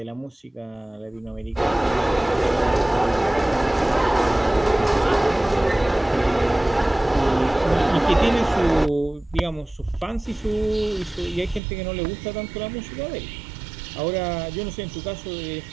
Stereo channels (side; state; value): left; drops out; at 11.6 s